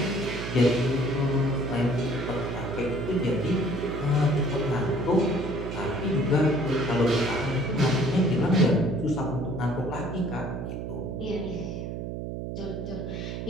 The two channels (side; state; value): right; noise; hum, 5 dB below the sound